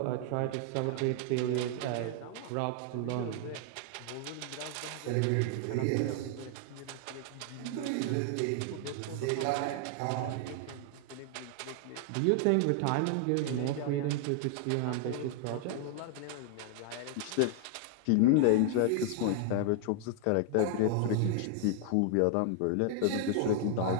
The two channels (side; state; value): both; different; correlation 0.00